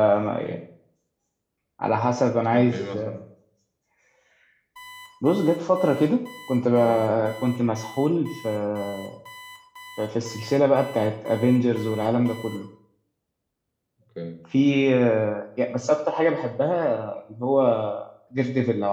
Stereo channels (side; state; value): both; identical; correlation 1.00